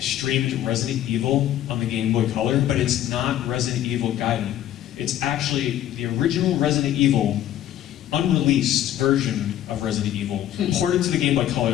Resident Evil on the Game Boy Color, but it's not Resident Evil Gaiden. It's actually the original Resident Evil unreleased version of Resident Evil, ported to the Game Boy Color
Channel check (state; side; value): quieter; right; 12.0 dB